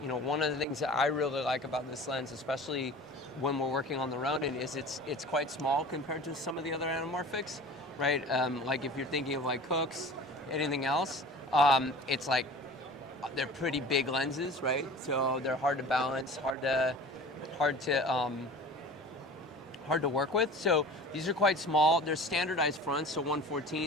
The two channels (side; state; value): both; normal; correlation 0.40